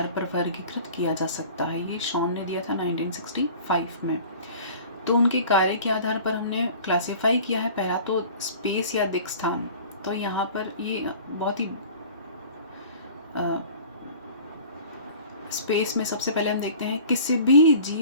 पर वर्गीकृत किया जा सकता है। ये शॉन ने दिया था 1965 में। तो उनके कार्य के आधार पर हमने क्लासिफाई किया है। पहला तो स्पेस या दिक् स्थान। तो यहाँ पर ये बहुत ही स्पेस में सबसे पहले हम देखते हैं किसी भी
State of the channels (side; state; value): both; inverted; correlation -0.44